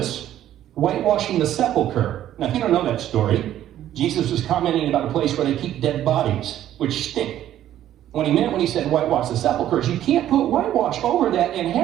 whitewashing the sepulcher. Now, if you don't know that story, Jesus was commenting about a place where they keep dead bodies, which stink. What he meant when he said whitewash the sepulcher is you can't put whitewash over that and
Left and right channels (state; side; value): quieter; left; 12.1 dB